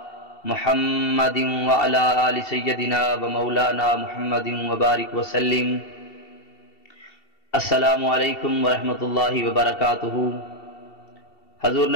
محمد وعلى آل سيدنا ومولانا محمد وبارك وسلم. السلام علیکم ورحمۃ اللہ وبرکاتہ. حضور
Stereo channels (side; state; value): right; late; 2.7 ms